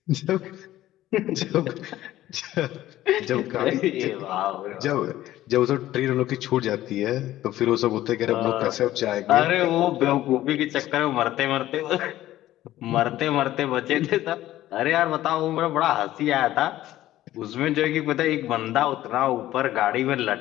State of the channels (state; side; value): quieter; right; 14.4 dB